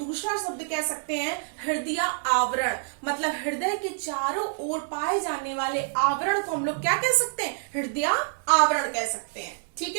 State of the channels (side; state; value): left; silent; digital silence